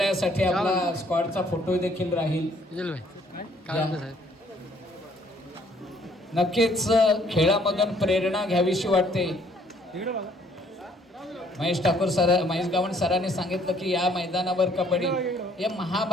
आपला स्क्वॉडचा फोटो देखील राहील. नक्कीच खेळामधून प्रेरणा घ्यावीशी वाटते. महेश गावण सरांनी सांगितलं की या मैदानावर कबड्डी, या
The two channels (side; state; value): both; normal; correlation 0.63